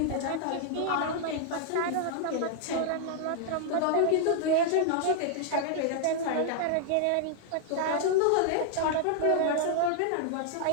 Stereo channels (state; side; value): different; both; correlation -0.01